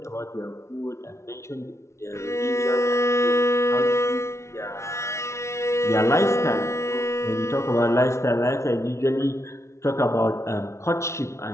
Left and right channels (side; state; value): right; late; 0.13 ms